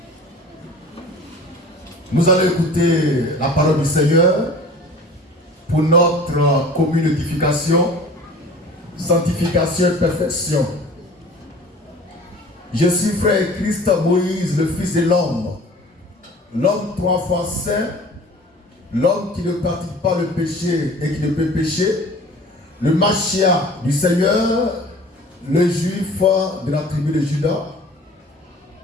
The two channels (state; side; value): normal; both; correlation 0.44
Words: Nous allons écouter la parole du Seigneur pour notre commune édification, sanctification et perfection. Je suis frère Christ Moïse, le Fils de l'homme, l'homme 3 fois saint, l'homme qui ne pratique pas le péché et qui ne peut pécher, le Machia du Seigneur, le juif de la tribu de Juda.